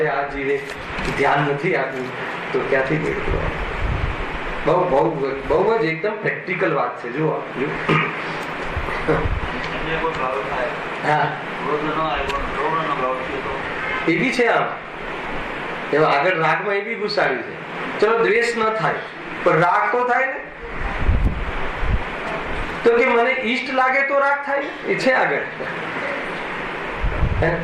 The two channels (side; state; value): both; identical; correlation 1.00